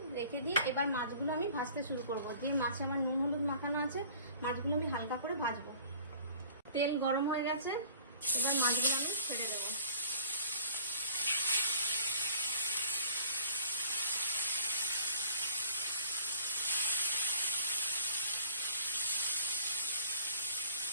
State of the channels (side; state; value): both; inverted; correlation -0.50